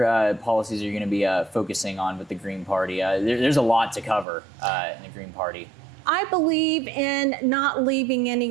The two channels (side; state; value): left; drops out; at 4.2 s